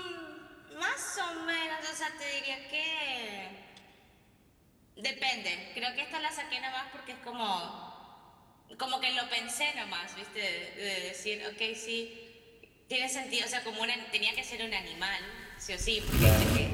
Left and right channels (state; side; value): identical; both; correlation 1.00